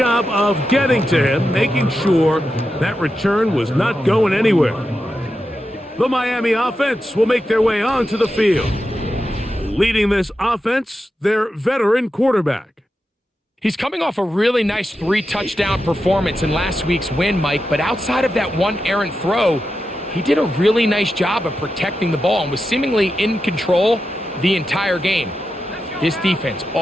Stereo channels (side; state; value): both; normal; correlation 0.89